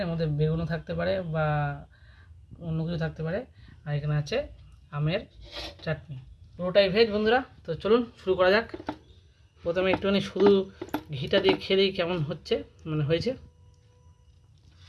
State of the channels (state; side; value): identical; both; correlation 1.00